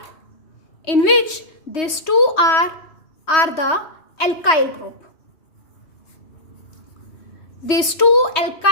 in which these two are the alkyl group. These two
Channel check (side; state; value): right; late; 3.2 ms